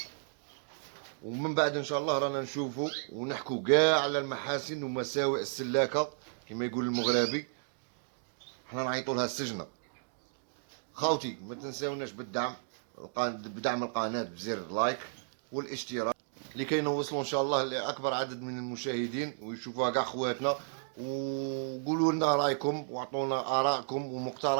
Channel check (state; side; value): silent; left; digital silence